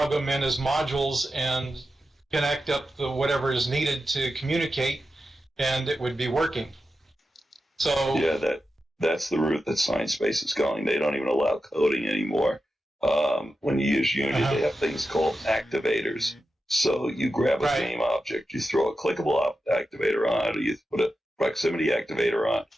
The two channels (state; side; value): normal; both; correlation 0.90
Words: them in as modules and connect up the whatever is needed to communicate, and it would be working. So yeah, that's the route that Sciencebase is going. They don't even allow coding anymore. When you use Unity, they have things called activators. So you grab a game object, you throw a clickable activator on it, or you put a proximity activator on,